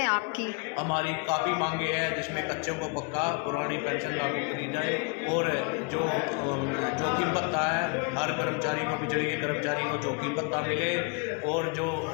आपकी? हमारी काफ़ी मांगे हैं, जिसमें कच्चों को पक्का, पुरानी पेंशन लागू करी जाए और जो जोखिम भत्ता है हर कर्मचारी को, बिजली के कर्मचारी को जोखिम भत्ता मिले और जो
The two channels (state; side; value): quieter; right; 32.9 dB